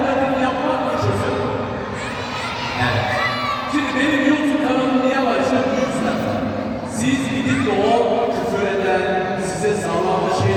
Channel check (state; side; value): identical; both; correlation 1.00